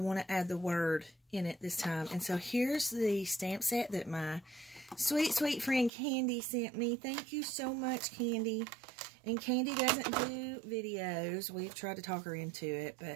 to add the word in it this time. And so here's the stamp set that my sweet, sweet friend Candy sent me. Thank you so much, Candy. And Candy doesn't do videos. We've tried to talk her into it,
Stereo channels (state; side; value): drops out; left; at 5.9 s